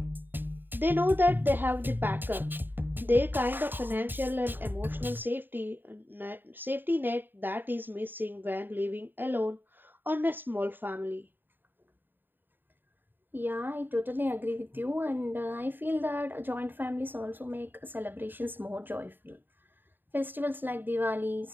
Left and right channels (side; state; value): left; late; 0.093 ms